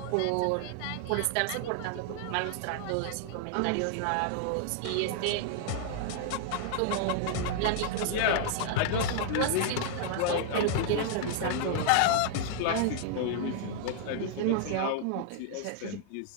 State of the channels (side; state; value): both; different; correlation 0.00